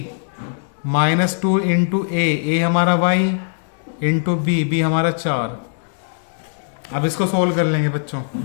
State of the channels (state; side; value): silent; right; digital silence